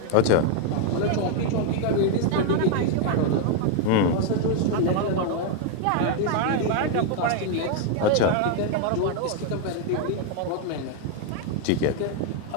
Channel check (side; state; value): both; different; correlation 0.00